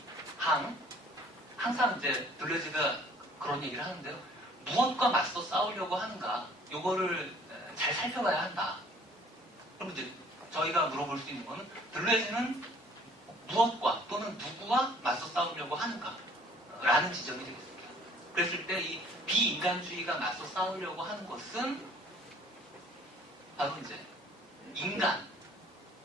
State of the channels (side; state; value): both; normal; correlation 0.55